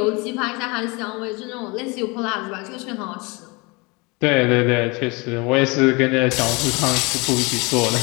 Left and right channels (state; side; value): quieter; right; 27.2 dB